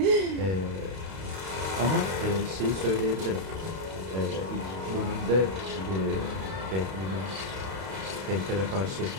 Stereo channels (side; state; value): left; late; 32 ms